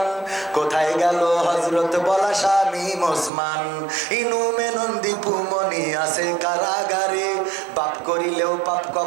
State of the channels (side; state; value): left; drops out; at 3.3 s